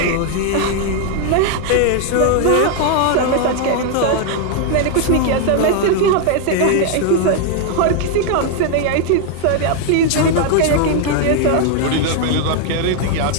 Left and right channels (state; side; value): different; both; correlation 0.00